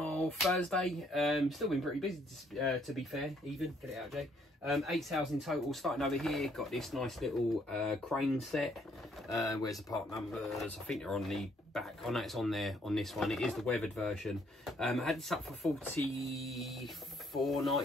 Thursday. Still been pretty busy to be fair, even. Get it out, Jay. 8 sales in total. Starting over here, got this nice little crane set. Where's the part numbers? I think they're on the back. Oh no, it's on there on this one. It is the weathered version. I had this up for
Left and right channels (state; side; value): normal; both; correlation 0.68